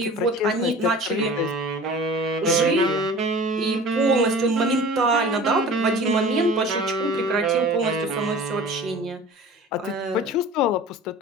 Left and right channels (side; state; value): both; normal; correlation 0.41